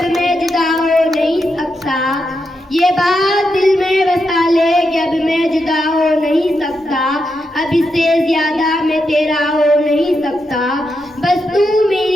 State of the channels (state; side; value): normal; both; correlation 0.84